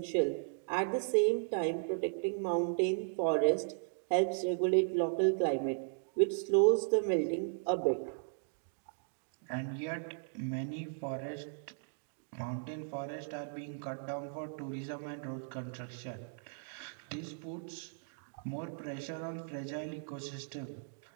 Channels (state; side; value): silent; left; digital silence